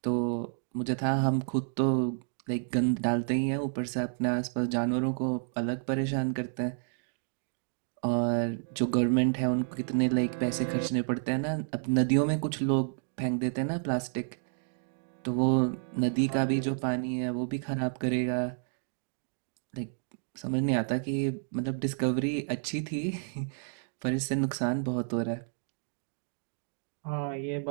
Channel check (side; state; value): left; silent; digital silence